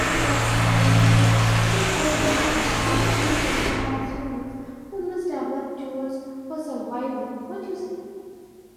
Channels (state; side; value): identical; both; correlation 1.00